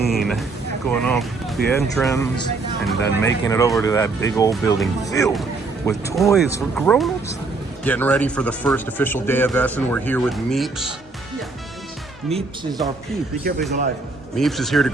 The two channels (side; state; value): left; quieter; 3.8 dB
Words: going up the entrance, and then making it over to that big old building filled with toys for grown-ups. Getting ready for the first official day of Essen. We're here with Meeps. Meeps is our peep. Be careful, he's alive. Meeps is here to